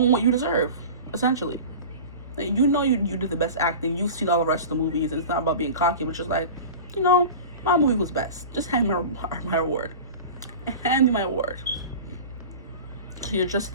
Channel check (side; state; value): both; inverted; correlation -0.34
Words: what you deserve, essentially. You know you did the best acting. You've seen all the rest of the movies, and it's not about being cocky, but just like, you know, my movie was best. Just hand me my award. Hand me my award. So you're just